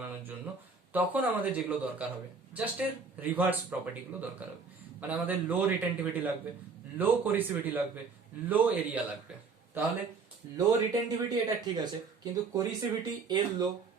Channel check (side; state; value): left; quieter; 4.8 dB